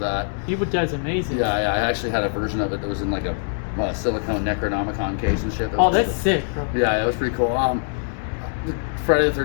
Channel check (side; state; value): right; silent; 64 dB below the other